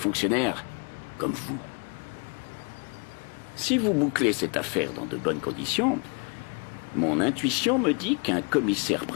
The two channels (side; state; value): right; quieter; 35.8 dB